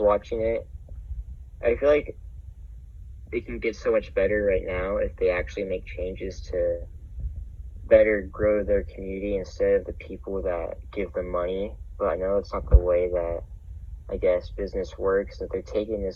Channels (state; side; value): identical; both; correlation 1.00